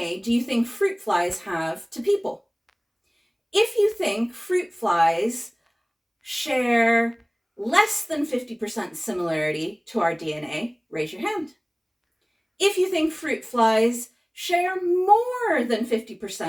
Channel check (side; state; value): both; identical; correlation 1.00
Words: do you think fruit flies have to people? If you think fruit flies share less than 50% similarity to our DNA, raise your hand. If you think fruit flies share more than